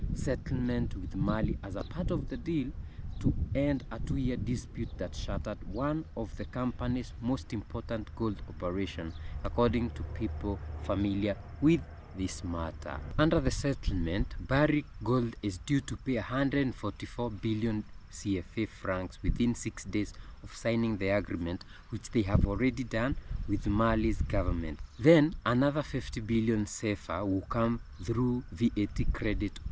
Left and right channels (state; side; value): identical; both; correlation 1.00